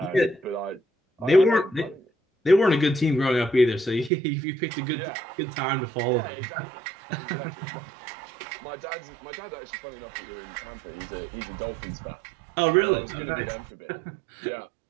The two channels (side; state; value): left; drops out; at 4.1 s